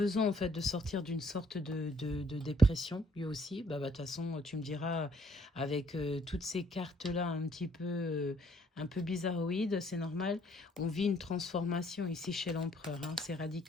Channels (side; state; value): both; normal; correlation 0.64